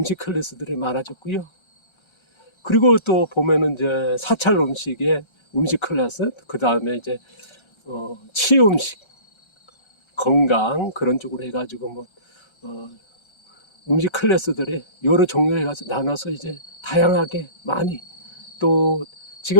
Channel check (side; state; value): right; late; 1.3 ms